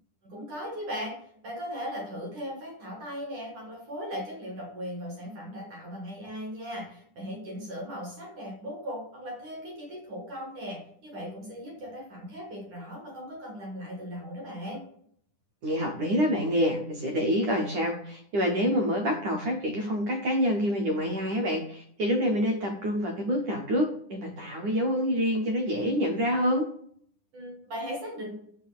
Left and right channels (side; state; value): left; late; 10 ms